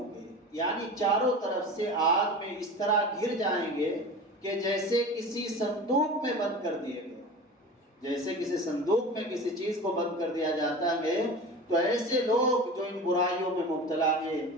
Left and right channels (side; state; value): both; normal; correlation 0.33